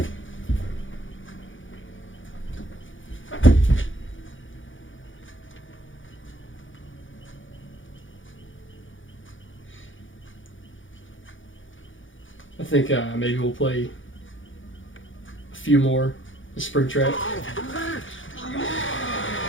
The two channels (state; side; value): late; right; 0.57 ms